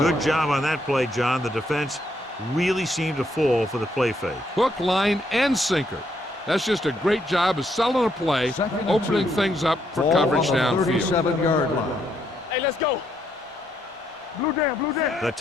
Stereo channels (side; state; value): both; normal; correlation 0.74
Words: job on that play, John. The defense really seemed to fall for the play fake. Hook, line, and sinker. That's just a great job of selling a play, opening things up for coverage downfield. 37-yard line. Hey, let's go. Blue down, blue down. The